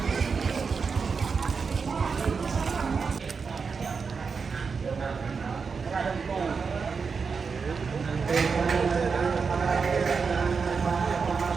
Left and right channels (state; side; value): quieter; left; 5.3 dB